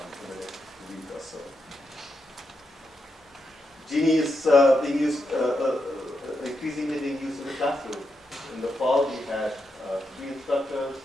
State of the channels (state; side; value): normal; both; correlation 0.84